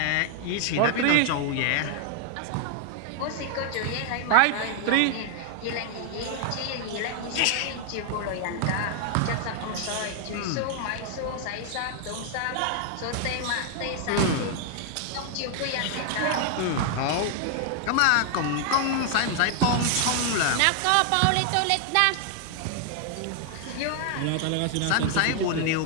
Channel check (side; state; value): both; different; correlation 0.00